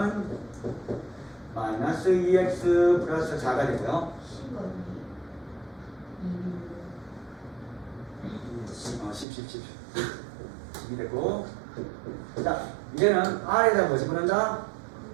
마이너스 2x 플러스 4가 되고요. 10이 되고 자 이제는 r에다 뭐 집어넣는다?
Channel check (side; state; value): left; drops out; at 9.2 s